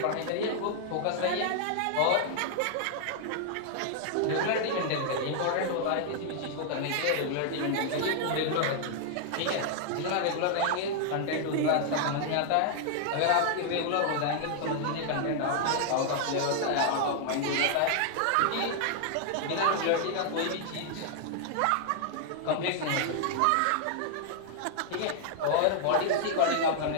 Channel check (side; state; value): both; different; correlation 0.00